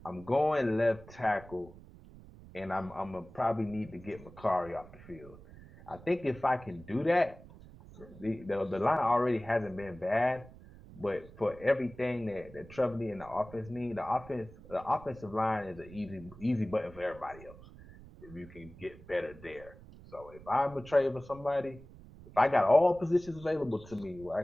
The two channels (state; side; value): noise; right; rumble, 19 dB below the sound